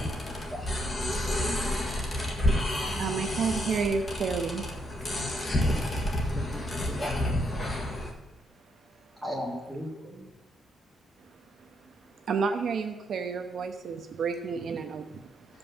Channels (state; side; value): normal; both; correlation 0.76